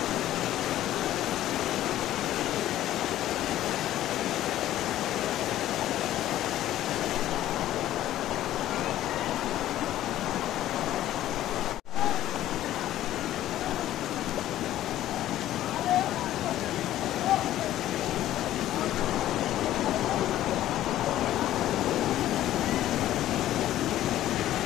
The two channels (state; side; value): quieter; right; 13.4 dB